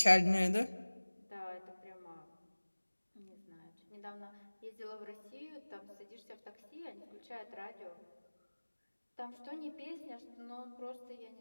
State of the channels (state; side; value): inverted; both; correlation -1.00